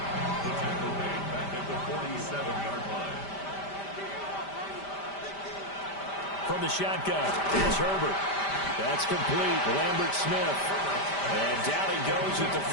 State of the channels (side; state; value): right; late; 5.1 ms